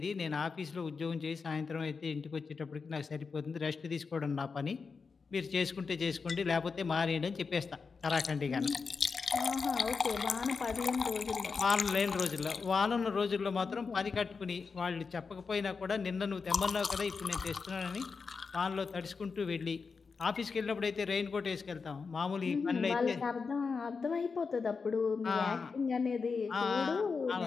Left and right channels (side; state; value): right; quieter; 5.0 dB